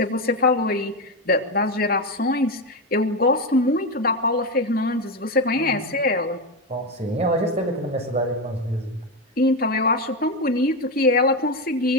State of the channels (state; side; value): normal; both; correlation 0.12